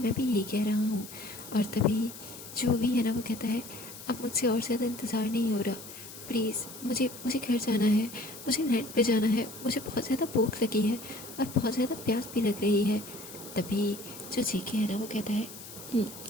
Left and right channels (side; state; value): left; noise; hiss, 14 dB below the sound